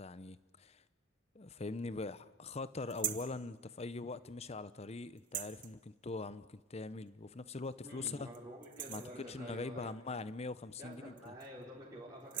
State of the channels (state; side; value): normal; both; correlation 0.33